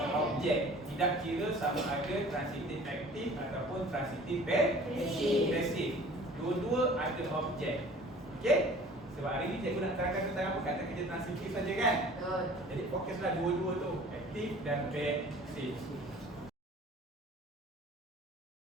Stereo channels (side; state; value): both; normal; correlation 0.47